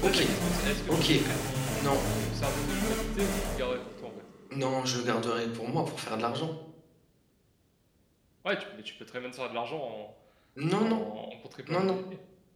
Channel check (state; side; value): identical; both; correlation 1.00